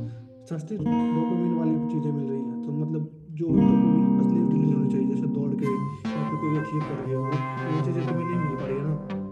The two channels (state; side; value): identical; both; correlation 1.00